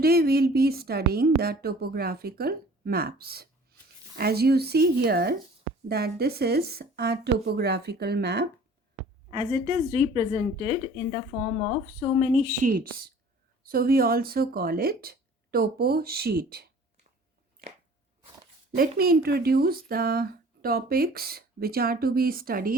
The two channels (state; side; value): normal; both; correlation 0.48